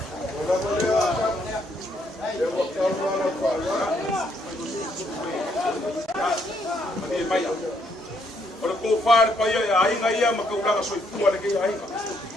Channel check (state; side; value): normal; both; correlation 0.72